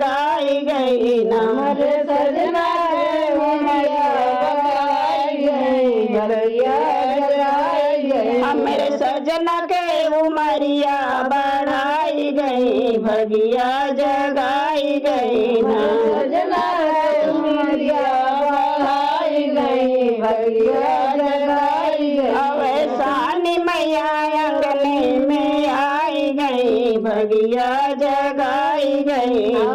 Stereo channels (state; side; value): identical; both; correlation 1.00